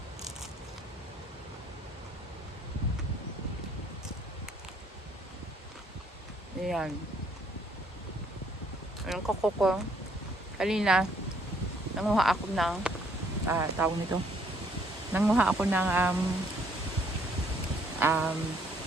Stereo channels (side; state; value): both; normal; correlation 0.66